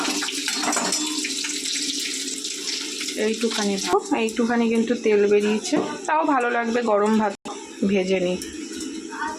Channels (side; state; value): both; identical; correlation 1.00